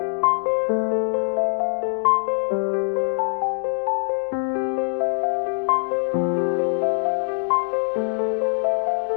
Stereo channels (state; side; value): silent; right; digital silence